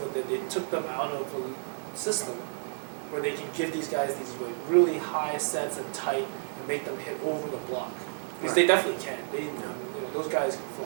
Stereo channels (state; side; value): silent; left; digital silence